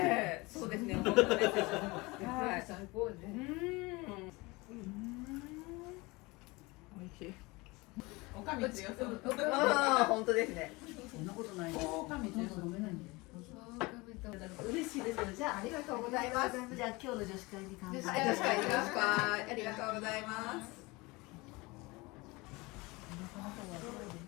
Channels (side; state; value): right; quieter; 23.9 dB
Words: り。そうですね。本当です。はい、最高ね。美味しい。おかみ強そう。ああ、本当ですね。そんなことない。おかみ強そう。飲めないんで。嬉しいです。じゃあありがとうございます。じゃあ今日の女子会に乾杯。女子会、ありがとうございます。